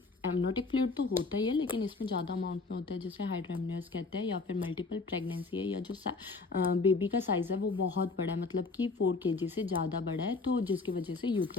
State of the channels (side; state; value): right; quieter; 3.9 dB